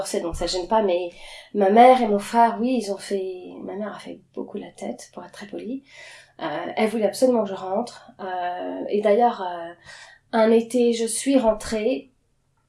donc ça gêne pas, mais ma mère et mon frère, oui, ma mère a fait beaucoup la tête pour être très polie. Elle voulait absolument que je rentre, et d'ailleurs un été je suis rentrée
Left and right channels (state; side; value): identical; both; correlation 1.00